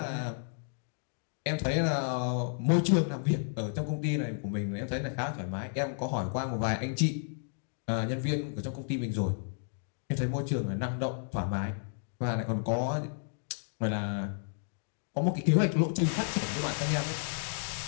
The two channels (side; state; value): right; silent; digital silence